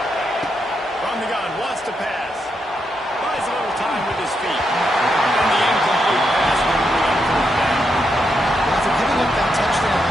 From the gun, wants to pass. Buys a little time with his feet. And the incomplete pass will bring up third down. After giving up that touchdown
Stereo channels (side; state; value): both; normal; correlation 0.82